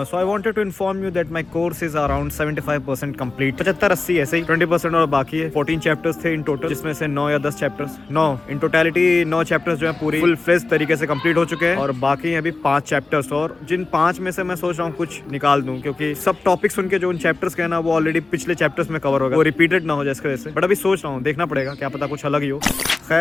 So I wanted to inform you that my course is around 75% complete. 75-80 ऐसे ही, 20% और बाकी है। 14 चैप्टर्स थे इन टोटल, जिसमें से 9 या 10 चैप्टर्स, 9 इन टोटलिटी 9 चैप्टर्स जो है पूरी फुल फ्लेज तरीके से कंप्लीट हो चुके हैं और बाकी अभी 5 चैप्टर्स। और जिन 5 में से मैं सोच रहा हूँ कुछ निकाल दूं, क्योंकि सब टॉपिक्स उनके जो उन चैप्टर्स के हैं ना वो ऑलरेडी पिछले चैप्टर्स में कवर हो गए, वो रिपीटेड ना हो जाए इसकी वजह से। बट अभी सोच रहा हूँ, देखना पड़ेगा, क्या पता कुछ अलग ही हो।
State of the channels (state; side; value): quieter; right; 3.5 dB